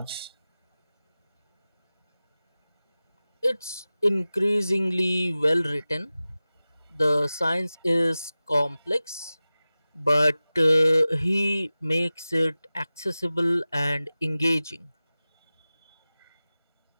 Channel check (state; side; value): inverted; both; correlation -0.97